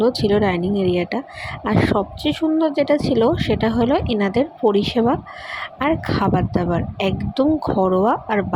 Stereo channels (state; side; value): identical; both; correlation 1.00